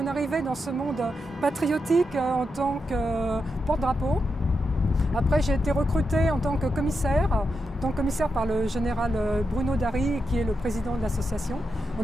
arrivée dans ce monde patriotique en tant que porte-drapeau. Après, j'ai été recrutée en tant que commissaire par le général Bruno Dary, qui est le président de l'association, en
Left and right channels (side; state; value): both; normal; correlation 0.86